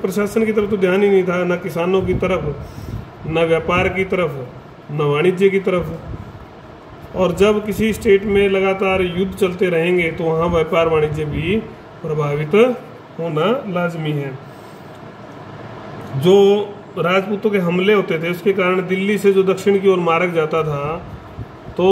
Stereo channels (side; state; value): both; identical; correlation 1.00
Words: की तरफ तो ध्यान ही नहीं था, न किसानों की तरफ, न व्यापार की तरफ, न वाणिज्य की तरफ। और जब किसी स्टेट में लगातार युद्ध चलते रहेंगे तो वहाँ व्यापार वाणिज्य भी प्रभावित होना लाजमी है। जो राजपूतों के हमले होते थे उसके कारण दिल्ली से जो दक्षिण की ओर मार्ग जाता था,